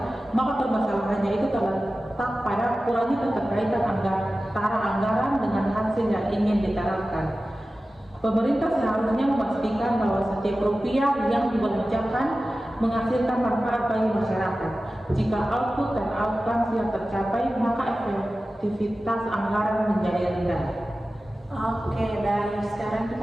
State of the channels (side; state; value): both; normal; correlation 0.95